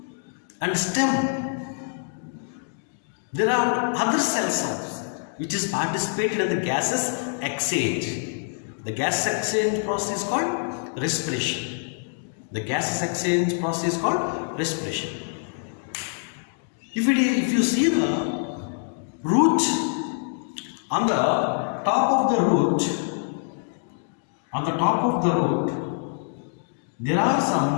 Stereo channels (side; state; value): right; silent; digital silence